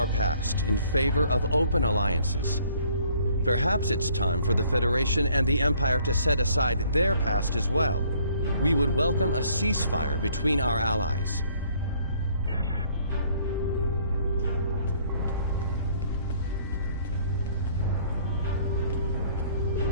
past in favor of open alliances. Perhaps it's time for the Federation and the Empire to set aside their past as well. We would welcome a ceasefire between our allies.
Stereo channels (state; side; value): inverted; both; correlation -0.61